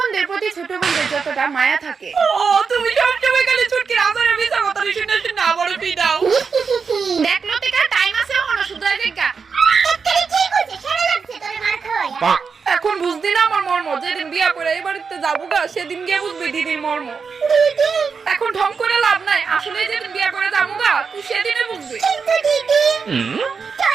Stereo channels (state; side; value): quieter; left; 5.5 dB